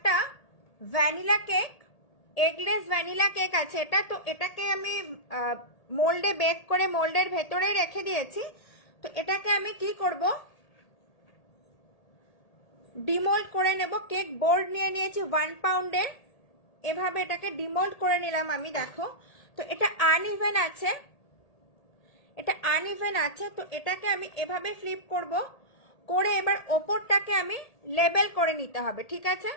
vanilla cake, eggless vanilla cake আছে এটা। তো এটাকে আমি মোল্ডে বেক করে মোল্ডের ভেতরে রেখে দিয়েছি। তো এটাকে আমি কি করব, ডিমোল্ড করে নেব। কেক বোর্ড নিয়ে নিয়েছি 1 পাউন্ডের, এভাবে এটাকে ডিমোল্ড করে নিলাম আমি। দেখো, তো এটা আনইভেন আছে, এটা আনইভেন আছে, তো এটাকে আমি এভাবে ফ্লিপ করব, করে এবার ওপরটাকে আমি লেবেল করে নিতে হবে। ঠিক আছে,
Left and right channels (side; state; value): right; late; 1.8 ms